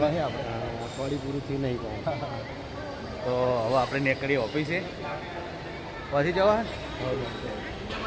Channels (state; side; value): identical; both; correlation 1.00